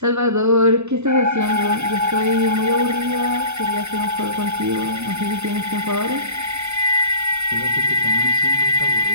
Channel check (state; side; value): late; left; 0.82 ms